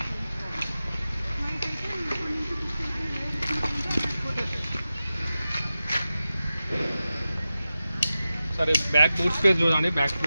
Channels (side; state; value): both; inverted; correlation -0.93